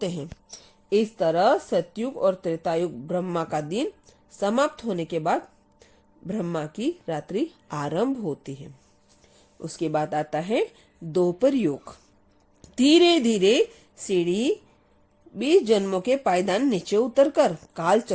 हैं। इस तरह सतयुग और त्रेता युग ब्रह्मा का दिन समाप्त होने के बाद ब्रह्मा की रात्रि आरंभ होती है। उसके बाद आता है द्वापर युग। धीरे धीरे सीढ़ी 20 जन्मों के पायदान नीचे उतरकर काल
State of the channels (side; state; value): both; identical; correlation 1.00